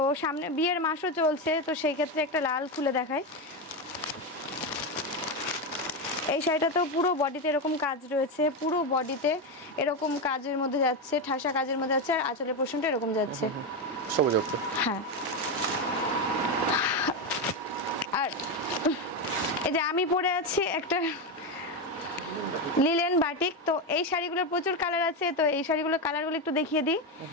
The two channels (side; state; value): both; normal; correlation 0.11